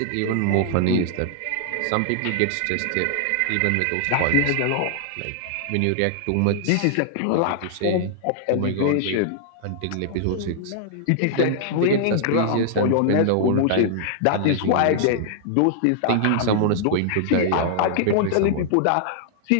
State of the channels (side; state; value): both; different; correlation -0.01